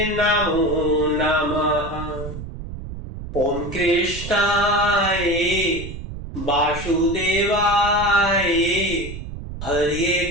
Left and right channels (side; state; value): right; noise; rumble, 10 dB below the sound